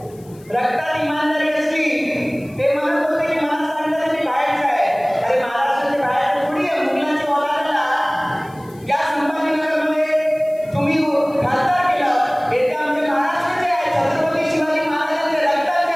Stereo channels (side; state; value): left; noise; hiss, 27 dB below the sound